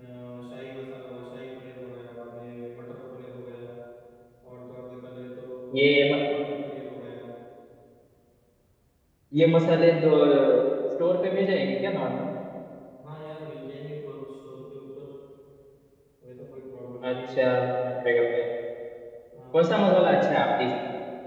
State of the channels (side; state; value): both; identical; correlation 1.00